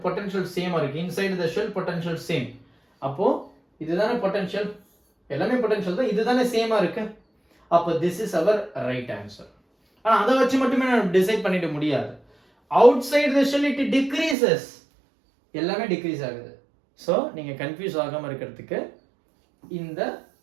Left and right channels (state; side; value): drops out; left; at 14.4 s